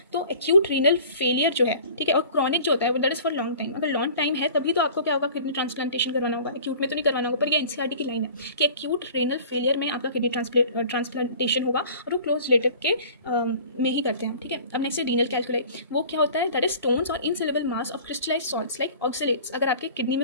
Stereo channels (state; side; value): inverted; both; correlation -0.45